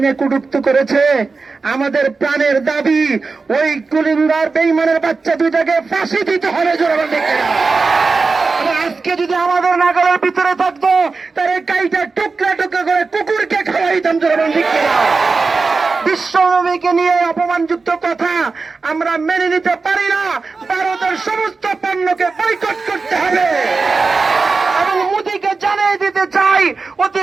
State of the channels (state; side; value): quieter; left; 4.2 dB